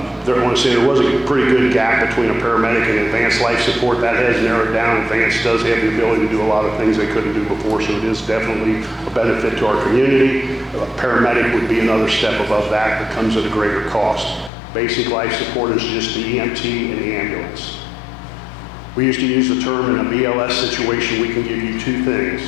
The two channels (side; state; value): right; drops out; at 14.5 s